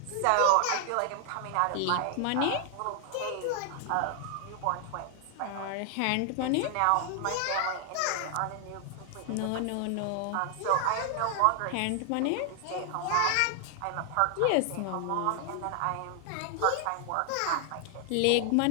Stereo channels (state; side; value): different; both; correlation 0.00